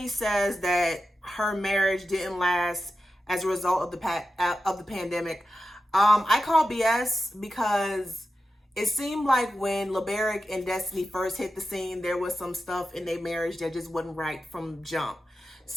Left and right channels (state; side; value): normal; both; correlation 0.91